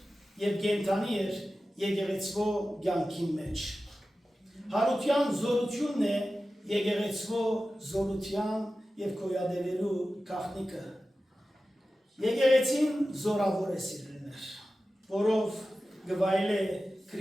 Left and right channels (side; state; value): both; normal; correlation 0.94